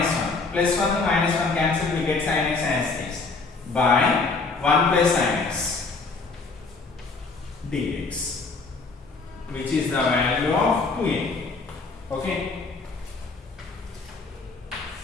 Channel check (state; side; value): quieter; right; 4.1 dB